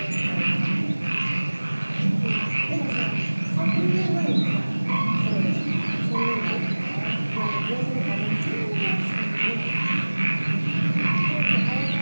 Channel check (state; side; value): inverted; both; correlation -1.00